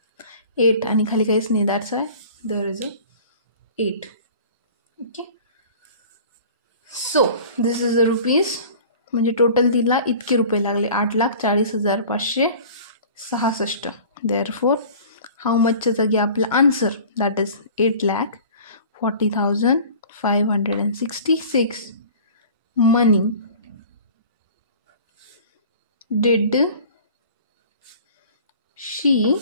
8 आणि खाली काहीच नाही. That's why there is a 8. Okay, so this is the rupees. म्हणजे टोटल तिला इतके रुपये लागले 8,40,566. देअरफोर हाऊ मचच्या जागी आपला answer that is 8,40,566 money did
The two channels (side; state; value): both; inverted; correlation -0.44